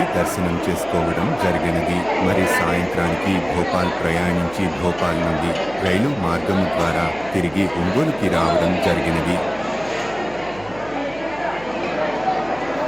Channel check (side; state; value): right; noise; hum, 20 dB below the sound